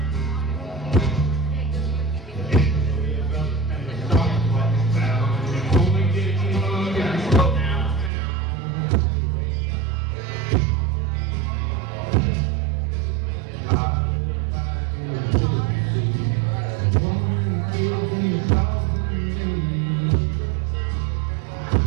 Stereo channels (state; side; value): drops out; left; at 8.1 s